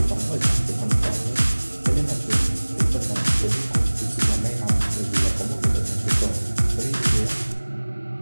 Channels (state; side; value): inverted; both; correlation -1.00